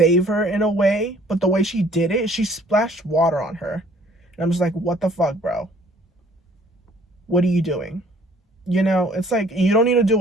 her in a way, but the way she did it, she splashed water on her. And I'm just like, what the fuck, bro? What are you doing? You know, it's like, you don't need to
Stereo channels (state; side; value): normal; both; correlation 0.57